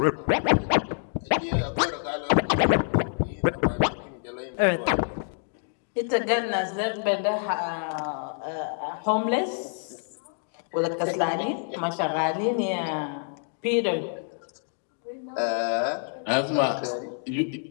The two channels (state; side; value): silent; right; 60 dB below the other